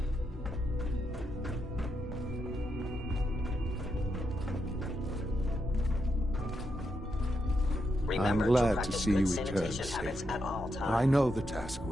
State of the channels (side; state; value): both; normal; correlation 0.82